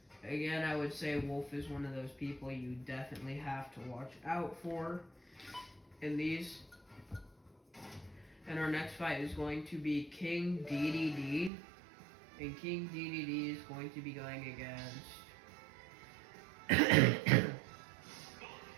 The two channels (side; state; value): left; drops out; at 11.5 s